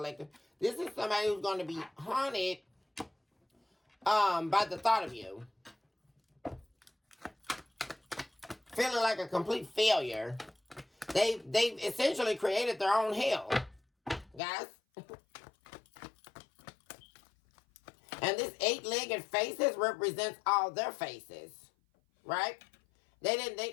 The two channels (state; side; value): drops out; right; at 14.4 s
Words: This is somebody who's going to be haunted by the thought of you. Feeling like a complete failure. They've essentially created their own hell, guys. And this 8-legged faces represents all their faces, right?